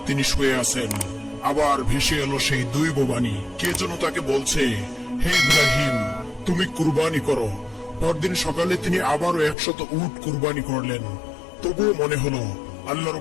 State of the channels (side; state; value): right; drops out; at 9.6 s